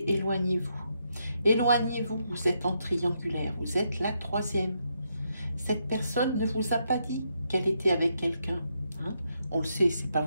éloignez-vous. Éloignez-vous, vous êtes en triangulaire, vous êtes la troisième. Cette personne ne vous a pas dit qu'elle était avec quelqu'un. Hein? On le sait, c'est pas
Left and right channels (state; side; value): inverted; both; correlation -0.79